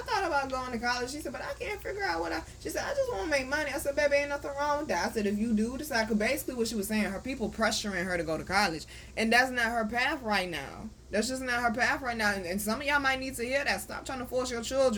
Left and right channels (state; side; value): identical; both; correlation 1.00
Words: about going to college. She said, but I can't figure out she said, I just want to make money. I said, baby, ain't nothing wrong with that. I said, if you do decide, because basically what she was saying, her people pressuring her to go to college, and that's not her path right now. That's just not her path right now, and some of y'all might need to hear that. Stop trying to force your